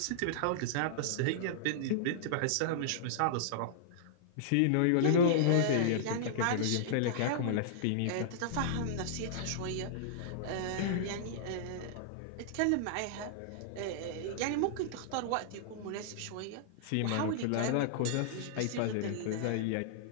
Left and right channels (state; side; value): different; both; correlation -0.02